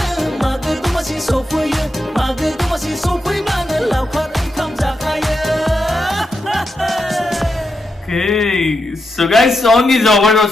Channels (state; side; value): normal; both; correlation 0.86